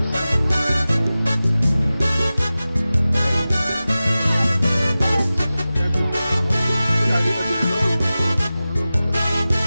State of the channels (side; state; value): both; inverted; correlation -0.96